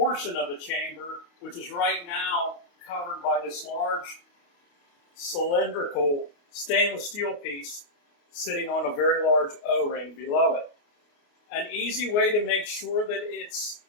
of the chamber, which is right now covered by this large cylindrical stainless steel piece sitting on a very large O-ring below it. An easy way to make sure that it's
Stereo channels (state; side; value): late; right; 28 ms